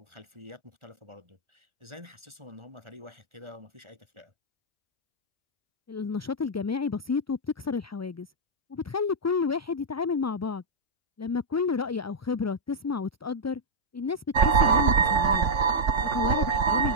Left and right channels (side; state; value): both; normal; correlation -0.07